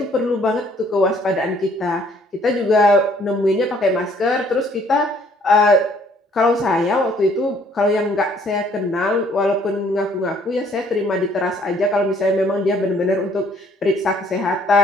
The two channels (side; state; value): both; normal; correlation 0.62